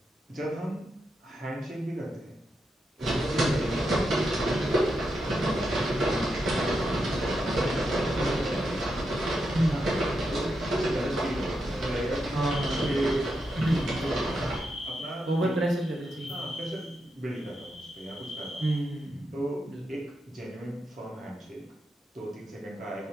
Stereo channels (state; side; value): normal; both; correlation 0.85